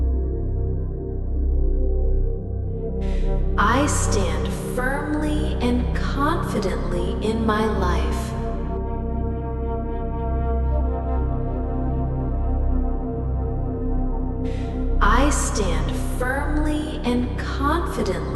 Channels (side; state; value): both; identical; correlation 1.00